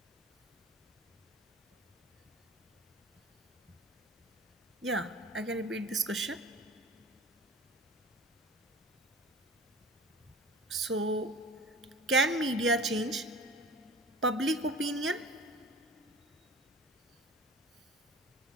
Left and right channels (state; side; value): normal; both; correlation 0.39